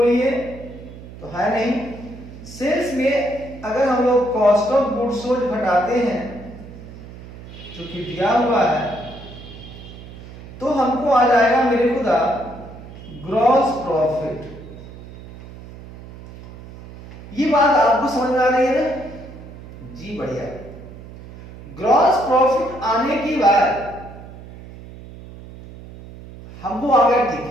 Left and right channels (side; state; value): right; noise; hum, 16 dB below the sound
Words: तो है नहीं। सेल्स में अगर हम लोग कॉस्ट ऑफ गुड्स सोल्ड घटाते हैं जो कि दिया हुआ है, तो हमको आ जाएगा मेरे खुदा ग्रॉस प्रॉफिट। ये बात आपको समझ में आ रही है ना जी? बढ़िया। ग्रॉस प्रॉफिट आने की बाद हमको आ गया, ठीक